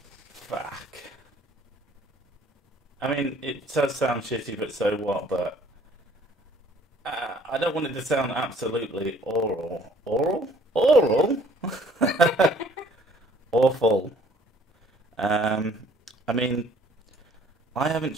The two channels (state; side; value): normal; both; correlation 0.57